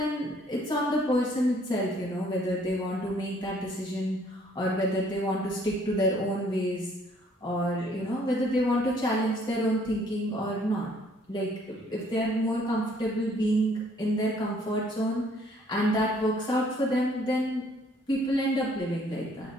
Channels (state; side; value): normal; both; correlation 0.62